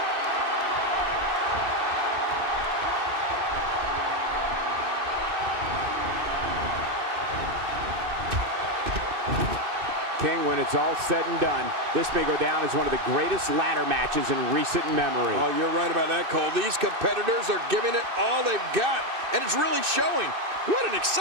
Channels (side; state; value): left; late; 2.6 ms